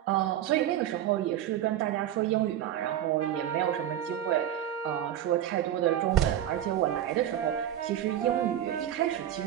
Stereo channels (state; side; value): quieter; left; 11.4 dB